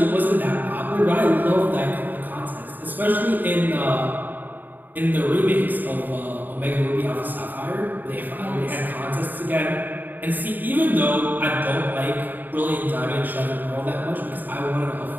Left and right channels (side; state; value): left; late; 0.088 ms